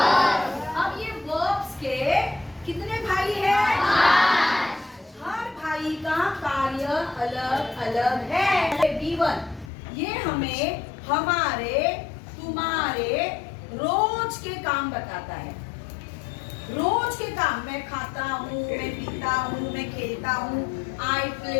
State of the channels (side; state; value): right; drops out; at 9.7 s